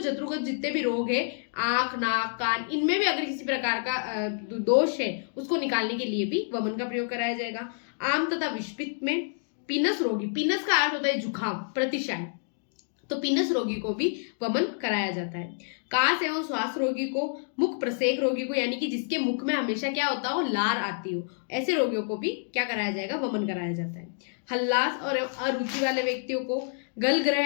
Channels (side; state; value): right; silent; digital silence